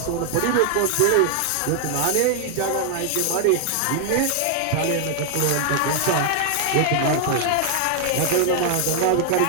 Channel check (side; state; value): both; different; correlation 0.00